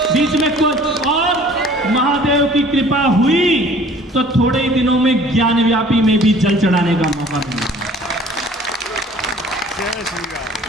बीच में कुछ और महादेव की कृपा हुई तो थोड़े ही दिनों में ज्ञानव्यापी में भी जल चढ़ाने का मौका मिला।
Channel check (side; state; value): both; normal; correlation 0.51